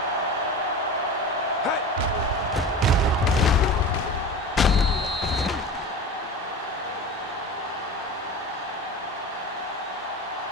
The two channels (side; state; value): both; normal; correlation 0.31